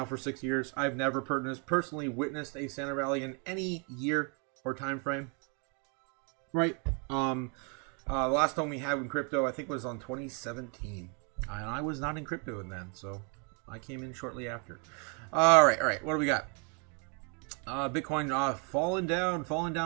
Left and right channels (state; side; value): quieter; left; 37.4 dB